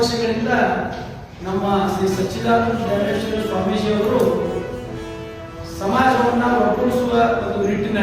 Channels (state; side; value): identical; both; correlation 1.00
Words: ನಮ್ಮ ಶ್ರೀ ಸಚ್ಚಿದಾನಂದ ಧರ್ಮೇಶ್ವರ ಸ್ವಾಮೀಜಿಯವರು ಸಮಾಜವನ್ನು ಒಗ್ಗೂಡಿಸುವ ಒಂದು